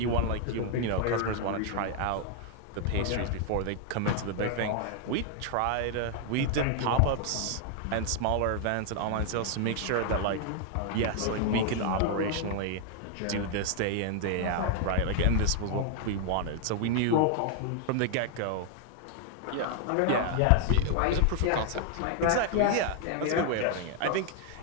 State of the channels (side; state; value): both; different; correlation 0.00